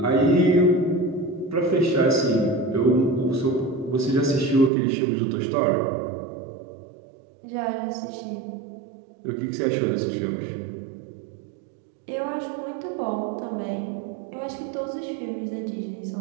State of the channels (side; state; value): left; drops out; at 4.7 s